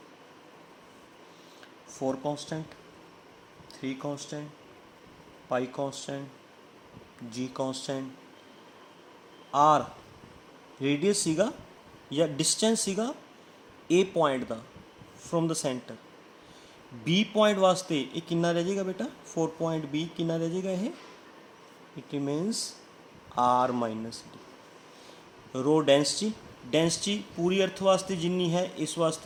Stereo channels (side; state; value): both; identical; correlation 1.00